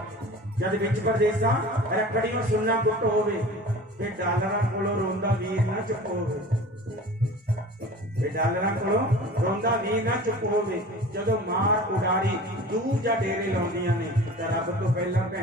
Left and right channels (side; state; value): both; normal; correlation 0.40